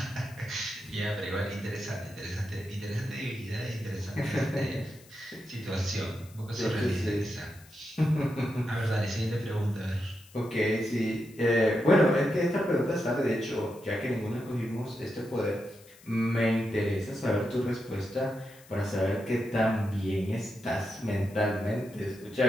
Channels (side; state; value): left; noise; hiss, 24 dB below the sound